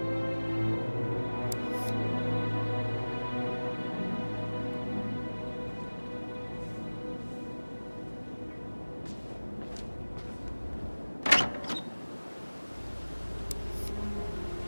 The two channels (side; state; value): both; inverted; correlation -1.00